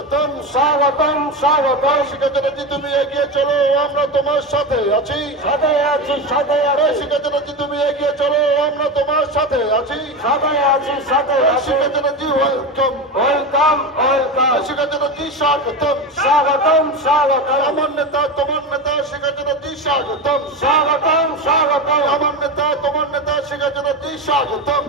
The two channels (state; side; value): normal; both; correlation 0.20